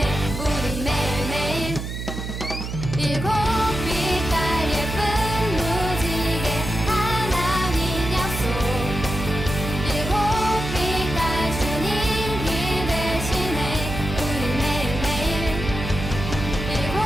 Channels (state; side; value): noise; right; hum, 6 dB below the sound